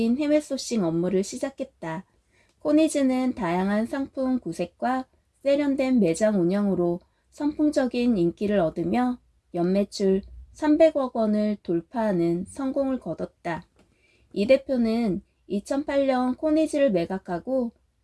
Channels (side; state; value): both; identical; correlation 1.00